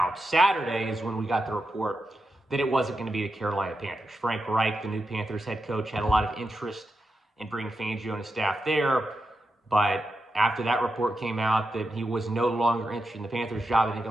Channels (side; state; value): both; normal; correlation 0.88